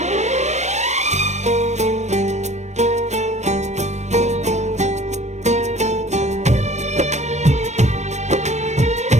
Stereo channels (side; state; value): left; late; 0.34 ms